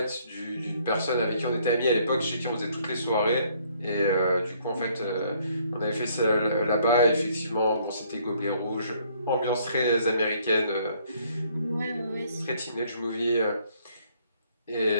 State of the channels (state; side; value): inverted; both; correlation -0.64